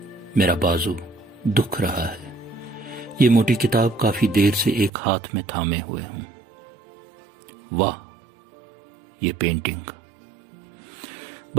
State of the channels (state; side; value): drops out; left; at 4.9 s